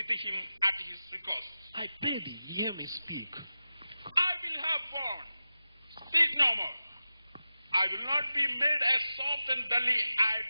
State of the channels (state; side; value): inverted; both; correlation -0.94